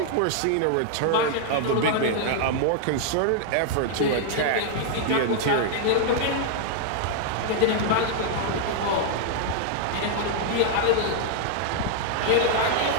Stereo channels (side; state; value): both; different; correlation -0.01